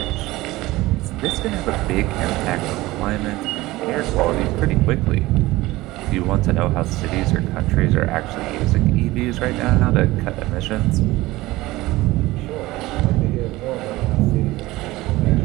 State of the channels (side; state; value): left; quieter; 18.7 dB